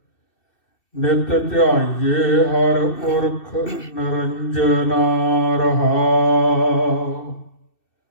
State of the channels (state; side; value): late; right; 2.7 ms